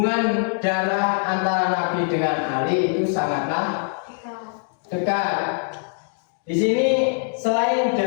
darah antara Nabi dengan Ali itu sangatlah dekat. Di sini selain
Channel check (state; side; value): silent; right; 60 dB below the other